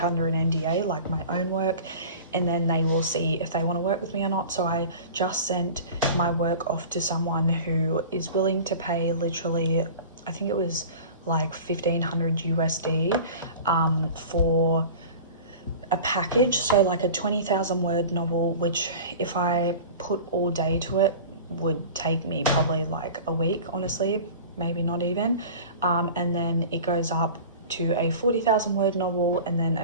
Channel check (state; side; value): inverted; both; correlation -0.38